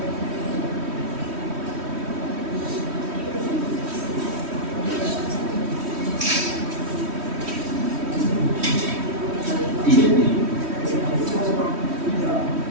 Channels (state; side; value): late; left; 3.1 ms